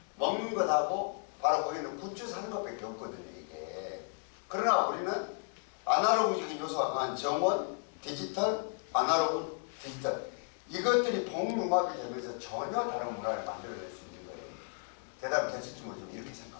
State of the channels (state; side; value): silent; right; 55 dB below the other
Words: 먹는 것하고 바로 거기는 굿즈 사는 것밖에 없거든요, 이게. 그러나 우리는 아날로그적인 요소가 강한 정원, 디지털, 아날로그, 디지털. 이것들이 복융합이 되면서 전혀 다른 문화를 만들어낼 수 있는 거예요. 대답이 되실지 모르지만 이렇게